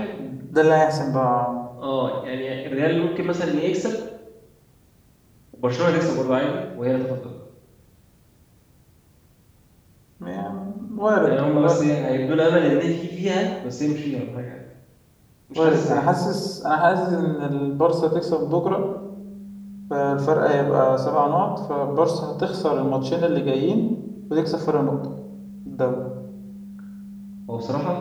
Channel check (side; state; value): both; identical; correlation 1.00